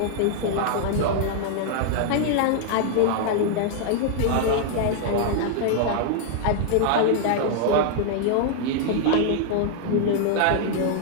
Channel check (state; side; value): different; both; correlation 0.00